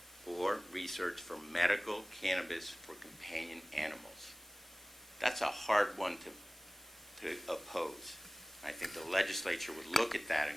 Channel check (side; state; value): both; normal; correlation 0.97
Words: for research for medical cannabis for companion animals. That's a hard one to oppose. I think the legislature would look at that